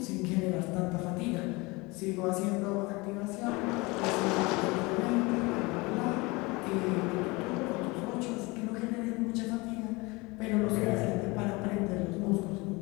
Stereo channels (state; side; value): quieter; right; 24.7 dB